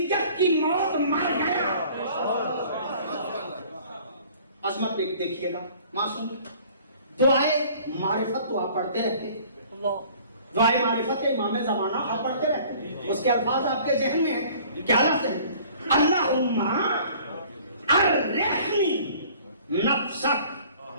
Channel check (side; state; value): both; inverted; correlation -0.52